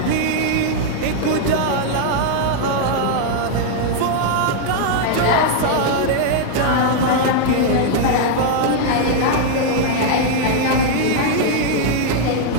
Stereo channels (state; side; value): different; both; correlation 0.00